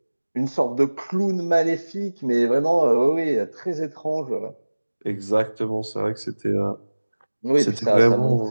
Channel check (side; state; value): both; inverted; correlation -1.00